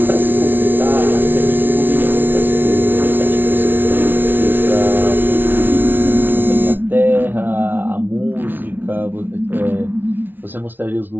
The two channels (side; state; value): left; late; 0.093 ms